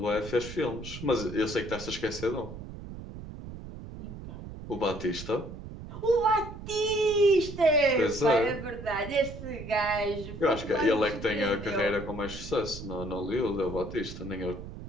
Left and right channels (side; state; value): right; noise; rumble, 11 dB below the sound